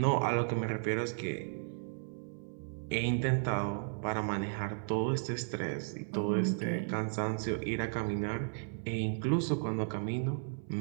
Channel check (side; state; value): left; silent; 55 dB below the other